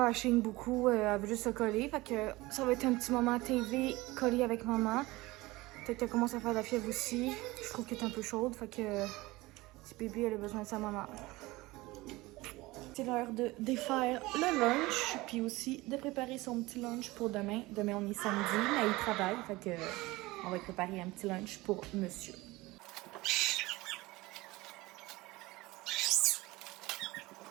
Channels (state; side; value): quieter; left; 20.6 dB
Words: elle chigne beaucoup. Elle veut juste se coller. Fait que ça va être un petit moment TV collé avec maman. Peut-être qu'elle commence à faire de la fièvre aussi. Je trouve qu'elle est un peu chaude. Fait que petit bébé, elle a besoin de sa maman. C'est l'heure de défaire le lunch. Puis aussi de préparer son petit lunch pour demain. Demain, on est samedi, mais il travaille. Fait que on va préparer un petit lunch pour monsieur.